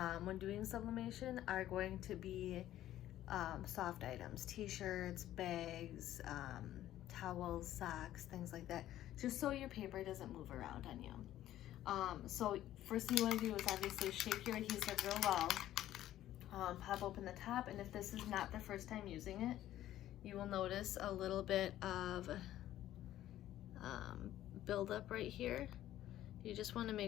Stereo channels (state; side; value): quieter; right; 13.2 dB